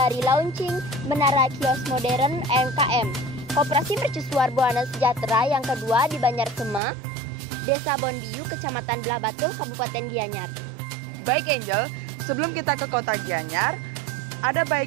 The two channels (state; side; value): drops out; left; at 6.8 s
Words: launching Menara Kios Modern MKM, Koperasi Mercusuar Buana Sejahtera yang kedua di Banyarsema, Desa Bonbiu, Kecamatan Belah Batu, Kabupaten Gianyar. Baik Angel, sebelum kita ke kota Gianyar, ada